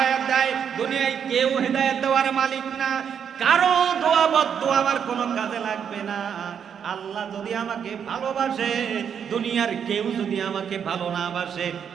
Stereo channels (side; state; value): left; quieter; 7.8 dB